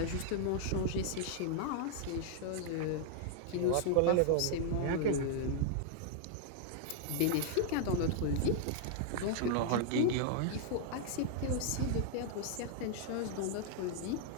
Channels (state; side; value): different; both; correlation 0.00